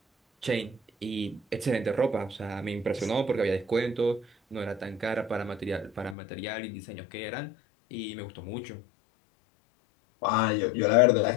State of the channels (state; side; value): drops out; right; at 6.2 s